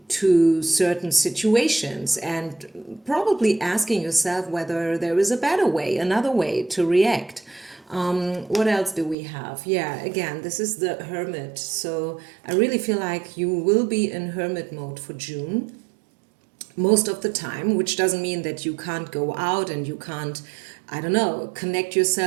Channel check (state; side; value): drops out; left; at 9.2 s